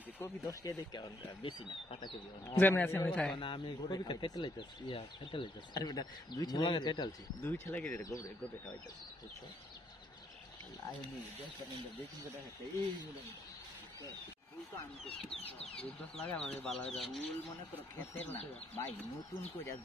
কবি 10 টাকা দেখে বেশি না পাতা কবি যেমন আছে আমি খাই না আমি কবি কেটে লাইতাছি ইয়া কেটে লাইতাছি আরে বেটা দুই ছেলে গেলে গোবরে গোবরে খাওয়াইতাছি বুঝছো আয় নি দেখতে নিন্দা দেখুন কথা আছে এই মুলো ফুল তো আমি তো দুধ লাগা মানে বালা ফুল মনে করো খেতের না ভাই নতুন কইরা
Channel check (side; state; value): both; normal; correlation 0.72